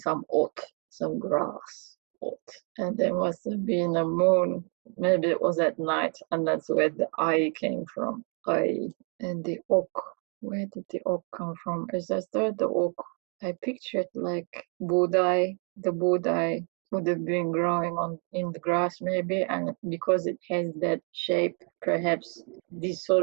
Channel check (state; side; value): quieter; left; 35.1 dB